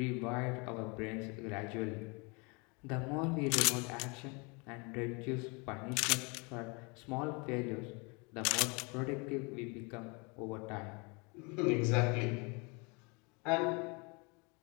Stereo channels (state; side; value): quieter; right; 30.4 dB